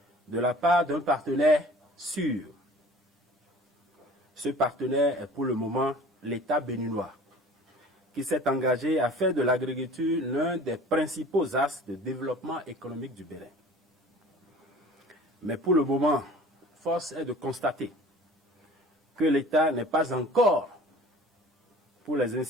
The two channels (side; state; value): both; normal; correlation 0.46